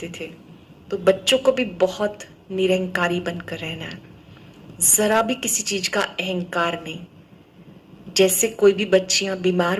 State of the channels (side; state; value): both; identical; correlation 1.00